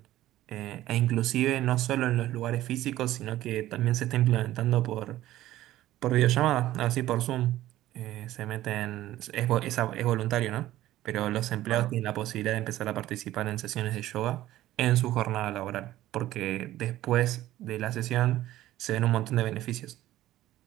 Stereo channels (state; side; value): quieter; left; 14.7 dB